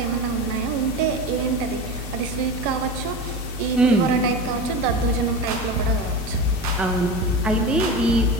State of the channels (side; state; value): both; normal; correlation 0.26